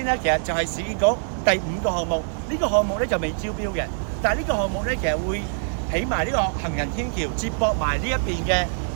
咧，其實就係市建局第5個項目。呢個項目咧就未招標嘅，但係呢個項目咧其實會起埋呢個行人天橋，接駁埋呢一邊嘅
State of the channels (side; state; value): left; silent; digital silence